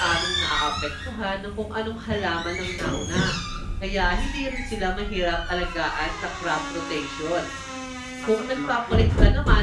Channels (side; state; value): both; identical; correlation 1.00